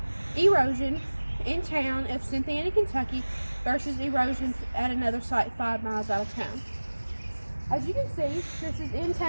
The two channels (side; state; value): both; inverted; correlation -1.00